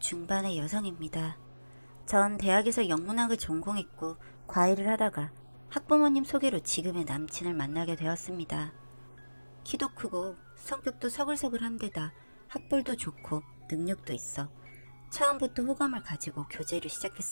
여성입니다. 전 대학에서 영문학을 전공했고 과외를 하다가 학부모님 소개로 지금의 남친을 만나게 되었습니다. 키도 크고 성격도 서글서글한 데다 학벌도 좋고 능력도 있어 처음부터 호감을 가지고 교제를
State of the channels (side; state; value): both; inverted; correlation -1.00